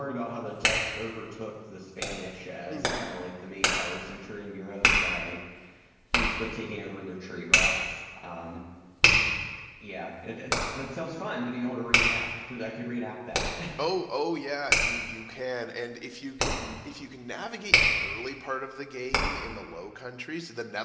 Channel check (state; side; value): identical; both; correlation 1.00